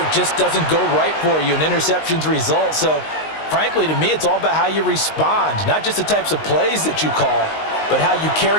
just doesn't go right for you and interceptions result. So, frankly, to me, it's all about how you respond, not just the types of plays that you call, but how you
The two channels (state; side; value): late; right; 19 ms